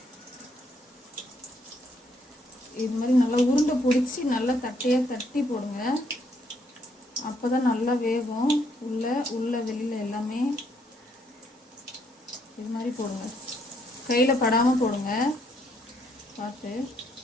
இது மாதிரி நல்லா உருண்டை பிடிச்சி நல்லா தட்டையாக தட்டி போடுங்க. அப்போ தான் நல்லா வேகும். உள்ள வெளியில் எல்லாமே இது மாதிரி போடுங்க. கையில் படாமல் போடுங்க பார்த்து.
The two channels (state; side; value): normal; both; correlation 0.71